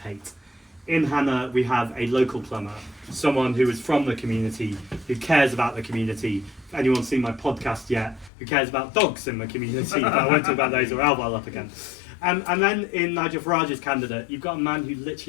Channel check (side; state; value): right; drops out; at 8.3 s